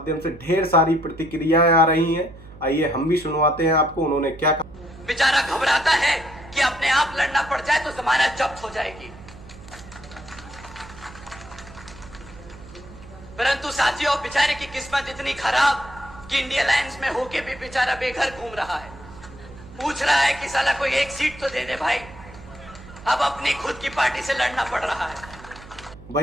से ढेर सारी प्रतिक्रियाएं आ रही हैं। आइए हम भी सुनवाते हैं आपको उन्होंने क्या कहा। बेचारा घबराता है कि अपने आप लड़ना पड़ जाए तो जमानत जब्त हो जाएगी। परंतु साथियों, बेचारे की किस्मत इतनी खराब कि इंडिया अलायंस में होके भी बेचारा बेघर घूम रहा है। पूछ रहा है कि साला कोई एक सीट तो दे दे भाई। अब अपनी खुद की पार्टी से लड़ना पड़ रहा है।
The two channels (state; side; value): noise; right; hum, 19 dB below the sound